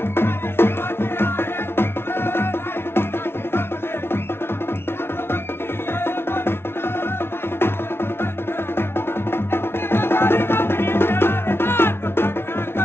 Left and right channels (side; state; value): right; late; 0.12 ms